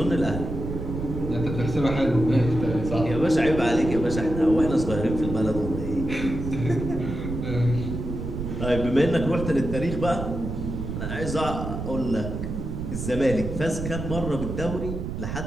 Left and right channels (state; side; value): noise; right; rumble, 5 dB below the sound